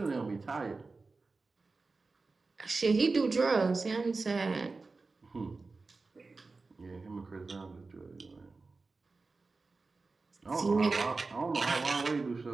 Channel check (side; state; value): left; quieter; 3.9 dB